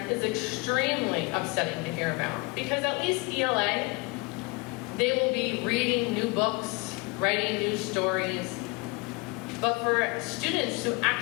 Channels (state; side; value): quieter; right; 26.6 dB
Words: is extremely upsetting to hear about because at least ELA, they will be reading new books, writing new stories. But for students who